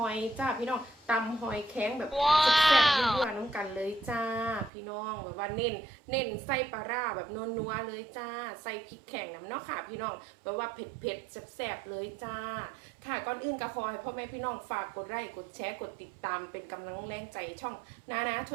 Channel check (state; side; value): drops out; left; at 4.7 s